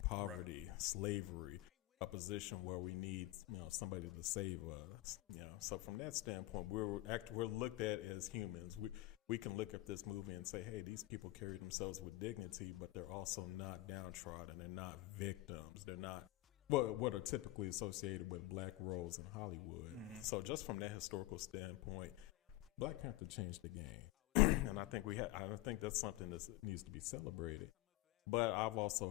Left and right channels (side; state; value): right; quieter; 18.0 dB